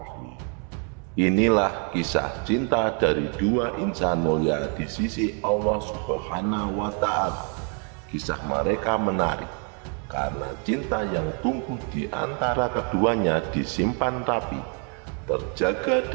Inilah kisah cinta dari dua insan mulia di sisi Allah Subhanahu wa Ta'ala. Kisah mereka menarik karena cinta yang tumbuh di antara keduanya disimpan rapi, terjaga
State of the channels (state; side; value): quieter; left; 39.4 dB